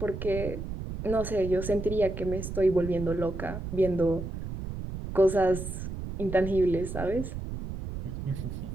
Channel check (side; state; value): right; noise; rumble, 7 dB below the sound